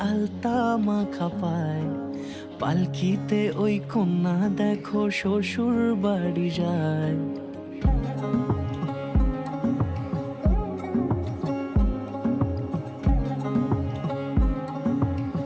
আলতা মাখা পায়, পালকিতে ওই কন্যা দেখো শ্বশুর বাড়ি যায়।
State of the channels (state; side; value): identical; both; correlation 1.00